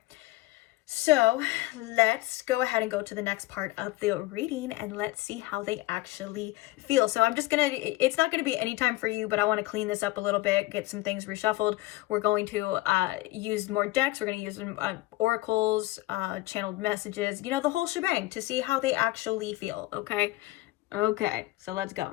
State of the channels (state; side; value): quieter; right; 18.6 dB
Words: So let's go ahead and go to the next part of the reading and let's see how they actually feel. So I'm just it's not going to be any time for you, but I want to clean this up a little bit, get some things reshuffled. We're going to use more decks. We're going to use oracles, channeled messages, the whole shebang to see how they actually feel, okay? Okay, so let's